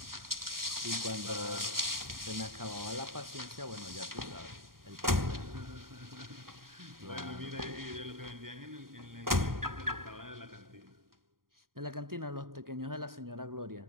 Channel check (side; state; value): left; late; 0.92 ms